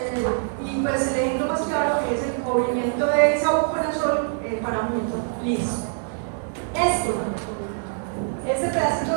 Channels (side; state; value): left; silent; 62 dB below the other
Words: y pues el ejemplo más claro es el cubrimiento de isavuconazol para mucho. Listo. Este pedacito